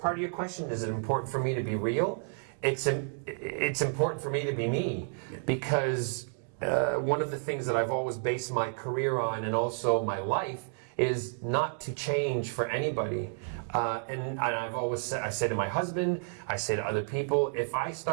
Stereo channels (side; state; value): left; silent; 57 dB below the other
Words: of your question, is it important for me to be real? It's important for me to be me, because one of the things that I've always based my career on, and also my life, is not to change for anybody. And I've always said, I say to my husband, I say to other people, if I